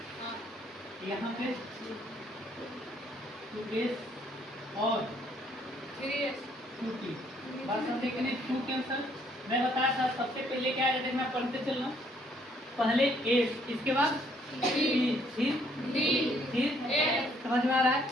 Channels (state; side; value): normal; both; correlation 0.66